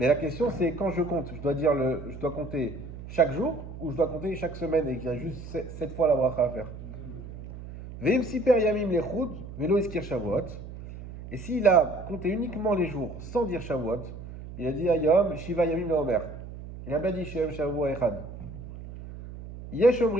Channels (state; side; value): noise; right; hum, 12 dB below the sound